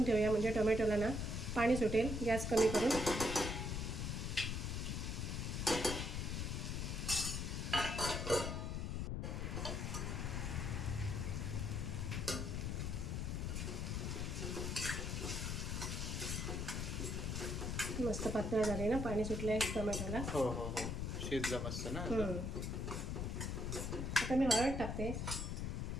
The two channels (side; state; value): left; noise; rumble, 1 dB below the sound